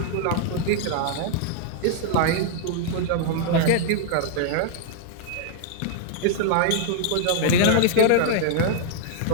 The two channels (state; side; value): different; both; correlation -0.01